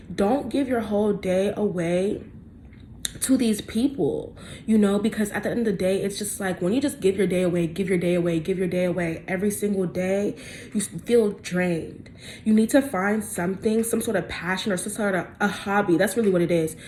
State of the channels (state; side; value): identical; both; correlation 1.00